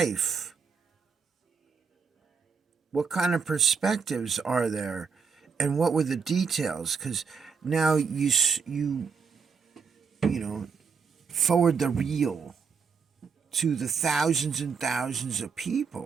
what kind of perspectives are there, and what were the details? Because now you know, forward the reel to the thousands and thousands of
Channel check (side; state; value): left; quieter; 5.8 dB